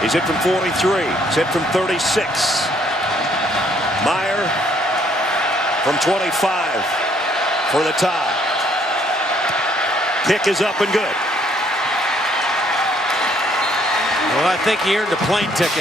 hit from 43. He's hit from 36. Meyer from 25 for the tie. Kick is up and good. Well, I think he earned a plane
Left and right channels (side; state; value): both; normal; correlation 0.66